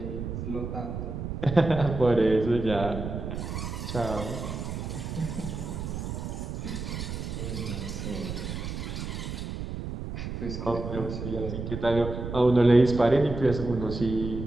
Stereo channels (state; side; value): noise; right; rumble, 5 dB below the sound